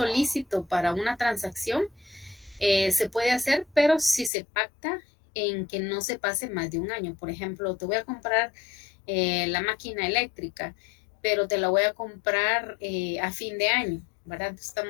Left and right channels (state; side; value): drops out; right; at 4.3 s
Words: lícito para una transacción, se puede hacer, pero si se pacta en que no se pase más de un año. Por ejemplo, te voy a comprar la máquina eléctrica, pero te la voy a comprar a fin de año, ¿verdad?